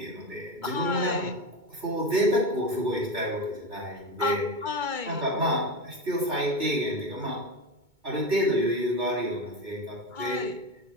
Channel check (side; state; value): left; late; 2.2 ms